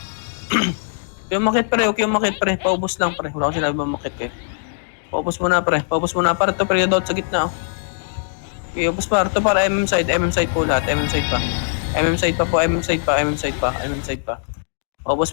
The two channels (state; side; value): silent; right; digital silence